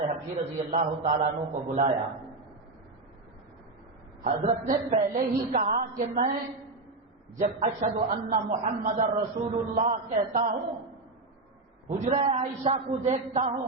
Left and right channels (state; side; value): quieter; left; 3.3 dB